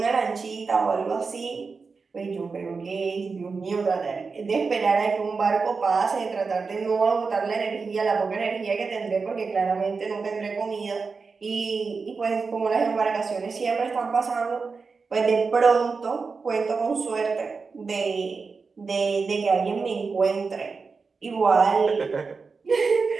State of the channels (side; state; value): left; quieter; 4.7 dB